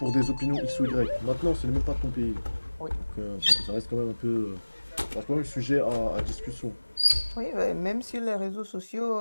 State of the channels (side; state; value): both; inverted; correlation -1.00